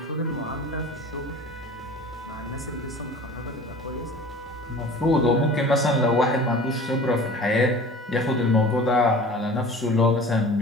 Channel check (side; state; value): both; normal; correlation 0.42